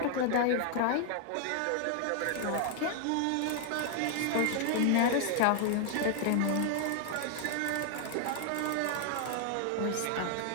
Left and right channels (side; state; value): both; different; correlation 0.00